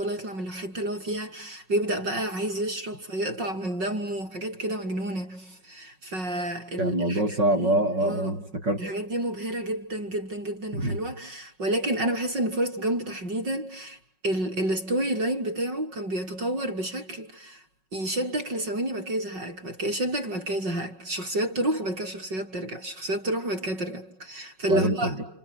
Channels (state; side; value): late; left; 5.4 ms